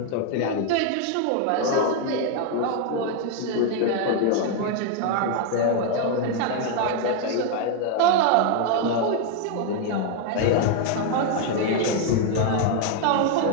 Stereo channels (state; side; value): different; both; correlation 0.01